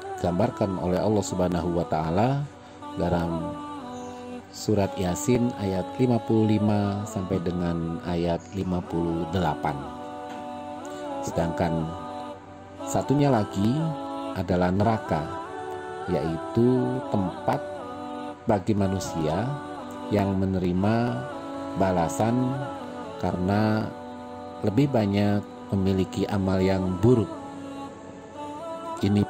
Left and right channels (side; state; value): both; identical; correlation 1.00